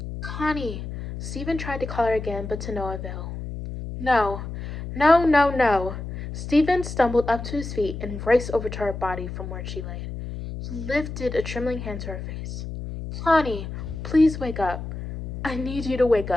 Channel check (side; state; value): left; noise; hum, 8 dB below the sound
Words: Connie! Stephen tried to call her again, but to no avail. No, no, no, no. Stephen stumbled up to his feet and raced over to her body from where she lay. He lifted a trembling hand to her face. Connie, please wake up. I need you to wake